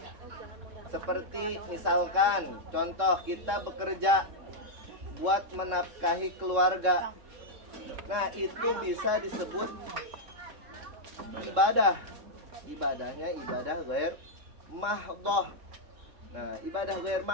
Seperti misalkan contoh kita bekerja buat menafkahi keluarga. Nah, itu bisa disebut ibadah. Ibadahnya ibadah ghair mahdhoh. Nah, ibadah ghair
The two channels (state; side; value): late; left; 3.7 ms